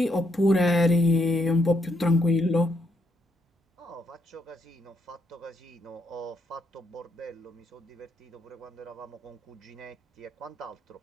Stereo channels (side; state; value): both; normal; correlation 0.76